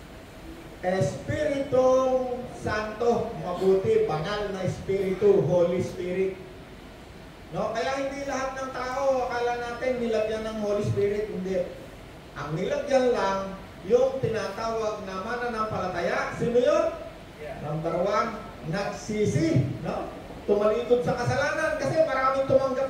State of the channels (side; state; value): both; identical; correlation 1.00